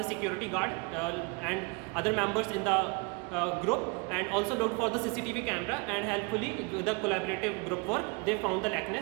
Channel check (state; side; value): quieter; left; 30.9 dB